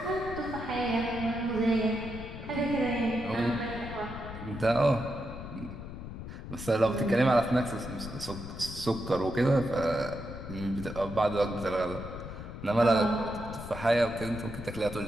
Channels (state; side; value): noise; left; rumble, 10 dB below the sound